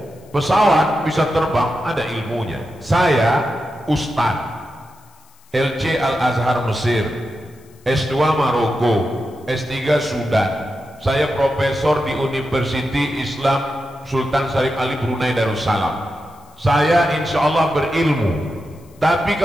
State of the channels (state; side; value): noise; left; hiss, 30 dB below the sound